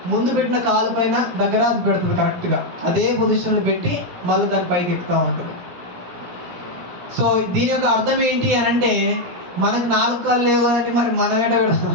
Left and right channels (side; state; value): left; late; 17 ms